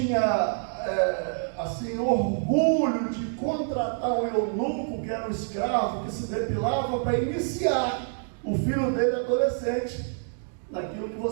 orgulho de contratar um eunuco, que era um escravo, que se depilava para iniciar o filho dele adolescente naquilo que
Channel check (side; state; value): left; silent; digital silence